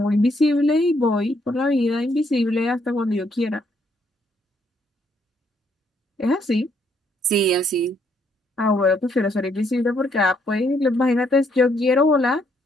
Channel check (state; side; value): normal; both; correlation 0.71